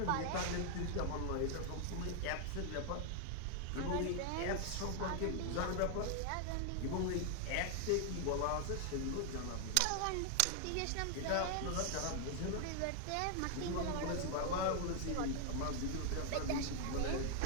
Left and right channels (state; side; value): different; both; correlation 0.00